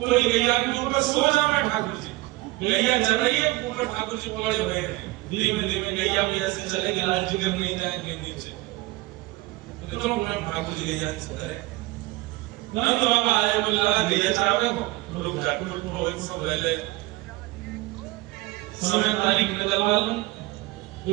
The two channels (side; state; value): left; quieter; 19.9 dB